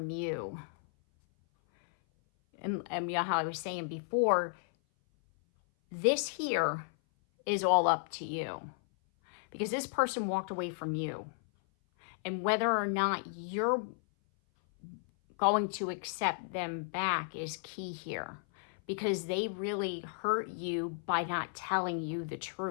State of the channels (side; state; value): right; silent; 55 dB below the other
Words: you. And you know how I was saying before, this here is all up to you. Because this person walked away from you. And whether or not you're going to accept them back is key here. Because they really hurt you by not telling you the